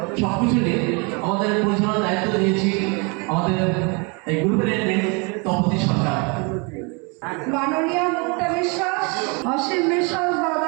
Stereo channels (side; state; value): left; quieter; 32.0 dB